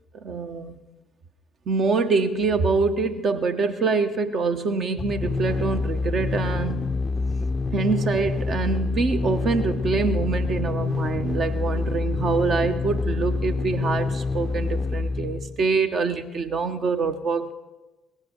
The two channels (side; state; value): both; normal; correlation 0.67